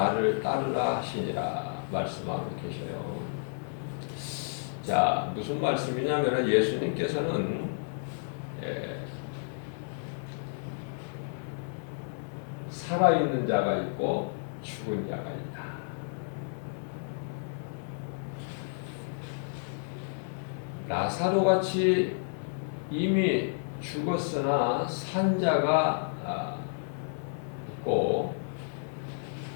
따르라 하시니라 말씀하고 계셔요. 자, 무슨 말씀이냐면 예수님께서는 살아있는 자가 있고 죽은 자가 있다. 라사로 같이 이미 죽었으나 산 자가 있고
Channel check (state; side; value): silent; right; digital silence